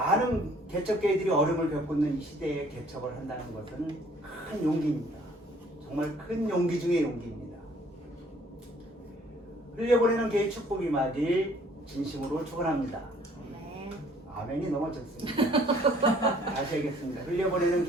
개척교회들이 어려움을 겪고 있는 이 시대에 개척을 한다는 것은 큰 용기입니다. 정말 큰 용기 중의 용기입니다. 흘려보내는 교회 축복이 임하길 진심으로 축원합니다. 아멘이 너무 좋습니다. 다시 하겠습니다. 흘려보내는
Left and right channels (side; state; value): both; normal; correlation 0.59